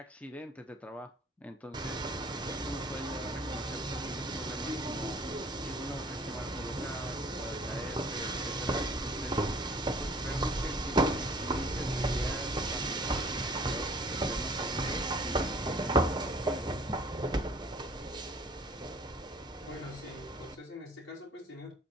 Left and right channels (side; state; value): both; normal; correlation 0.53